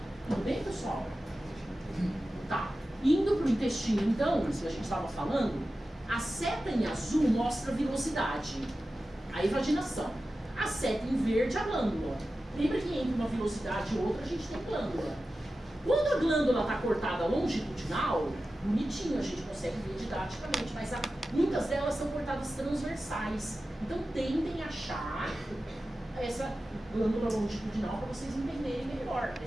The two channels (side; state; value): both; normal; correlation 0.94